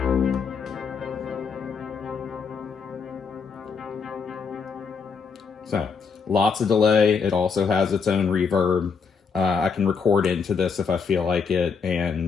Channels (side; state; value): right; quieter; 5.6 dB